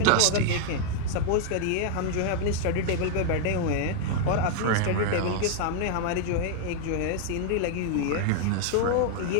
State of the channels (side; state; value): both; different; correlation 0.00